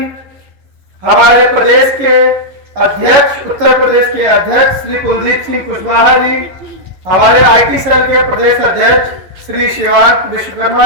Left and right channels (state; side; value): late; left; 11 ms